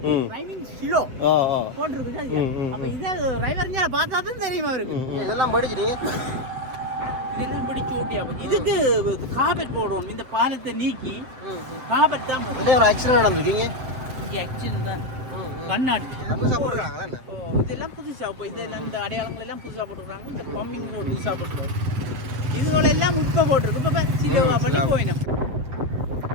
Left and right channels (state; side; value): late; left; 7.8 ms